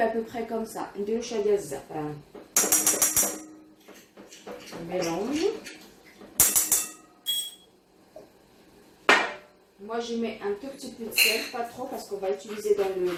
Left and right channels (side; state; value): both; identical; correlation 1.00